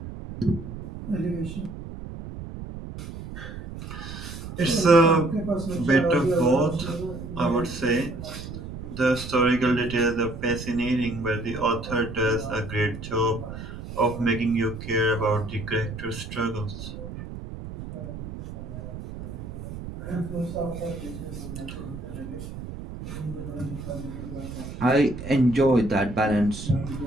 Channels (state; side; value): noise; right; rumble, 10 dB below the sound